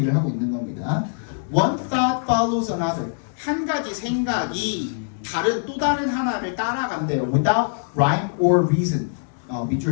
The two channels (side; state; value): right; silent; 63 dB below the other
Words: 하고 있는 겁니다. One thought follows another. 한 가지 생각이 또 다른 하나를 따라간대요. Without rhyme or reason.